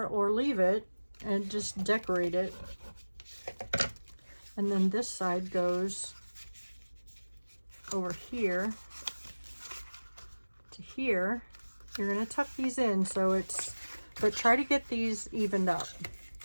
or leave it and just decorate it. And then this side goes over here to here. You're going to tuck these in so it's, but try to get these evened up.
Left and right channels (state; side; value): inverted; both; correlation -1.00